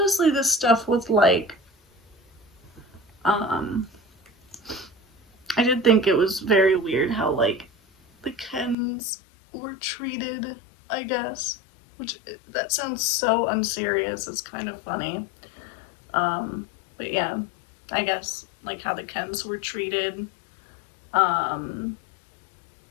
this stuff with like, I did think it was very weird how, like, the Kens were treated, I guess. Which, that sounds so unserious, it's kind of funny. But yeah, I guess, like, how the Kens were treated. Like,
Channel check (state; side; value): drops out; right; at 8.8 s